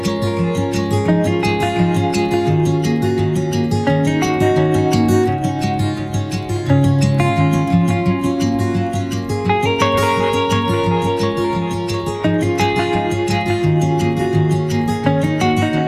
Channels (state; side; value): identical; both; correlation 1.00